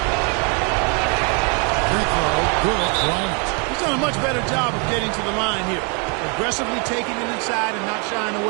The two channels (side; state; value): left; quieter; 35.3 dB